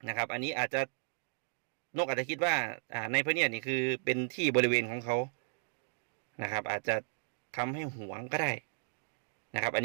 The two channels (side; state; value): left; silent; digital silence